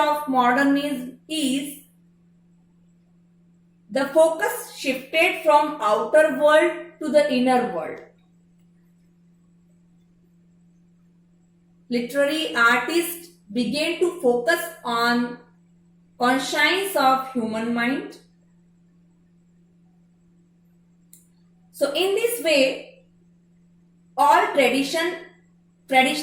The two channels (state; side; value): identical; both; correlation 1.00